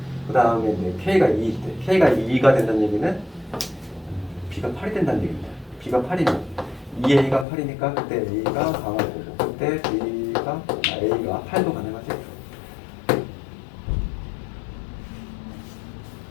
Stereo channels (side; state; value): right; drops out; at 7.5 s